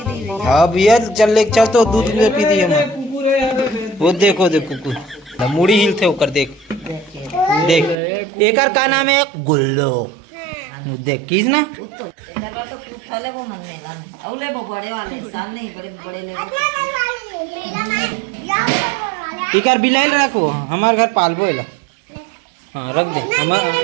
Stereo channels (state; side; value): drops out; left; at 8.0 s